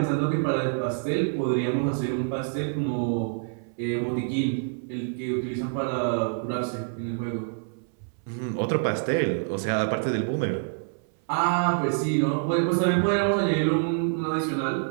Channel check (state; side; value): silent; left; 60 dB below the other